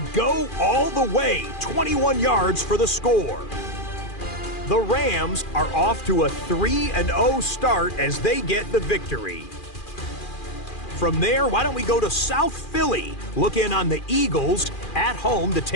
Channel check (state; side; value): late; right; 2.4 ms